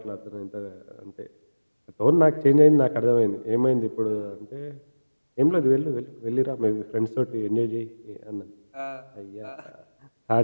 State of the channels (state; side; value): inverted; both; correlation -1.00